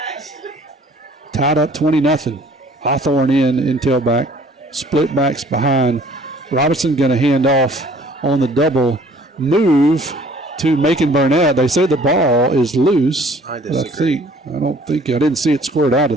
Tied up 20-0. Hawthorne in tailback. Split backs behind. Robinson going to hand off on the double move to Macon Burnett. They say the ball is loose. I disagree. I didn't see it squared out of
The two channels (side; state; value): both; normal; correlation 0.55